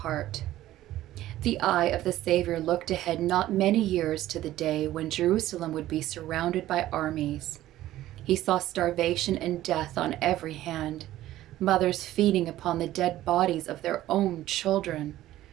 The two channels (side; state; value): left; quieter; 14.5 dB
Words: The eye of the Savior looked ahead not many years to the day when Jerusalem would be surrounded by armies. He saw starvation and death on every hand, mothers feeding upon the dead bodies of their own children.